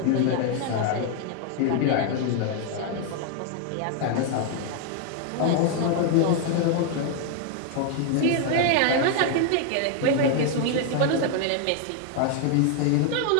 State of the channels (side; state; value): both; different; correlation 0.00